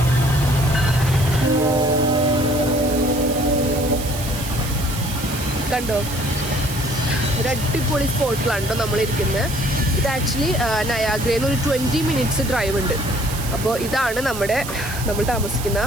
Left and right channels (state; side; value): noise; right; hiss, 10 dB below the sound